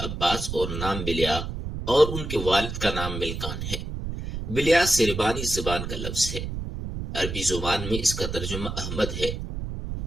اور نام بلیا، اور ان کے والد کا نام ملکان ہے۔ بلیا سربانی زبان کا لفظ ہے، عربی زبان میں اس کا ترجمہ احمد ہے۔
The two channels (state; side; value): noise; right; rumble, 5 dB below the sound